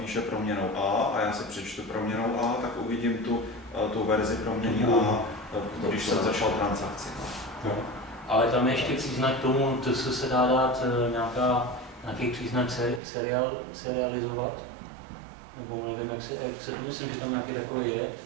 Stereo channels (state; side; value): drops out; left; at 13.0 s